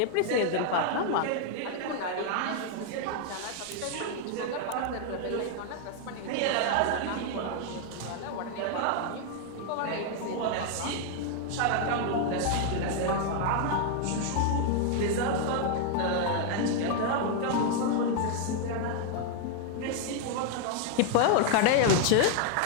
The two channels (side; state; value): both; different; correlation 0.00